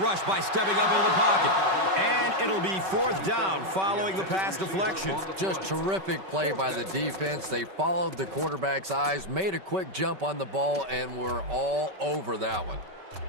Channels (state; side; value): late; left; 5.2 ms